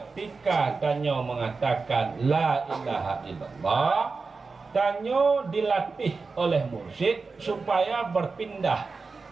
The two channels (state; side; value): quieter; left; 4.3 dB